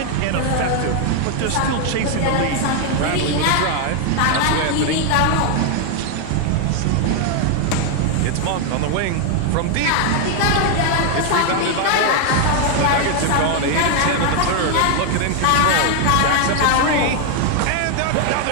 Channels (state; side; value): different; both; correlation 0.00